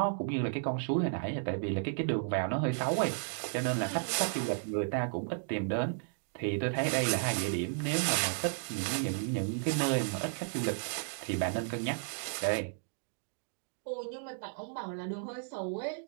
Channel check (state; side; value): silent; left; digital silence